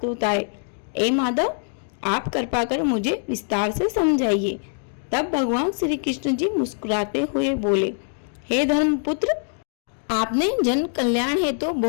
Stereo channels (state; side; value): silent; right; digital silence